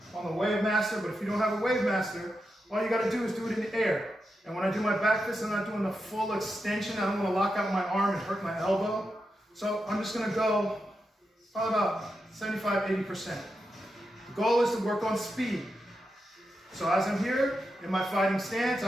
on the Wave Master, but if you don't have a Wave Master, all you got to do is do it in the air. And when I do my back fist, I'm not doing the full extension. I don't want to lock out my arm and hurt my elbow. So I'm just going to go probably about 75–80%. The goal is to work on speed. So as I'm here in my fighting stance,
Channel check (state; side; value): normal; both; correlation 0.87